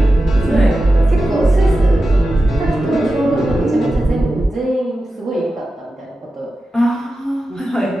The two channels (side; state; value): both; normal; correlation 0.92